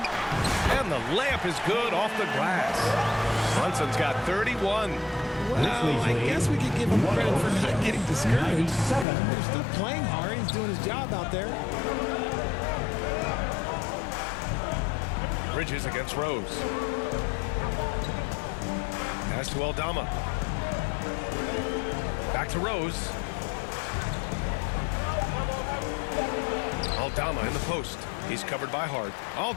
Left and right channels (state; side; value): drops out; right; at 9.1 s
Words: the layup is good off the glass. Brunson's got 31. Well, I guess we could give him credit for not getting discouraged. They're still playing hard. He's doing his job out there. Bridges against Rose. Pass to Aldama. Back to Rose. Aldama in the post. He's covered by Hart.